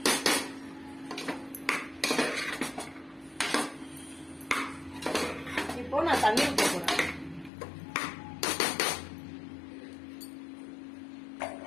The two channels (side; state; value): right; drops out; at 7.5 s